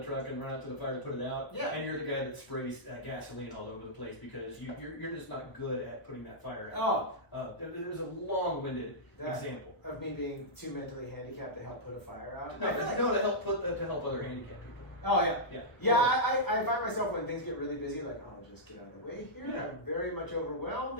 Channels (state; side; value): late; right; 1.1 ms